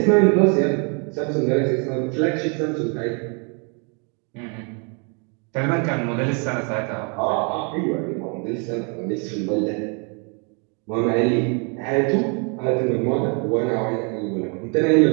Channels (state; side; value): quieter; left; 36.4 dB